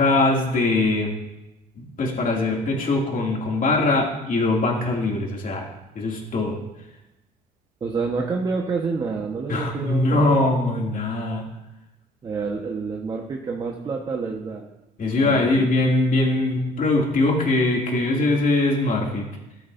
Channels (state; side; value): normal; both; correlation 0.53